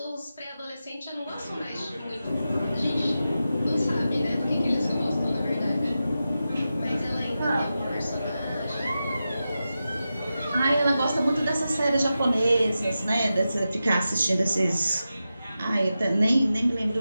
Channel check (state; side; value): inverted; both; correlation -0.91